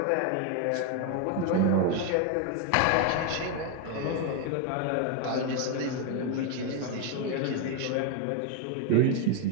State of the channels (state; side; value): different; both; correlation 0.01